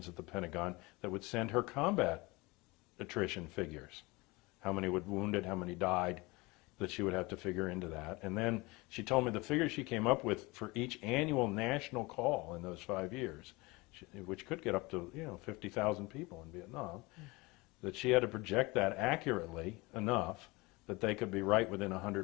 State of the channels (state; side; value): quieter; right; 23.8 dB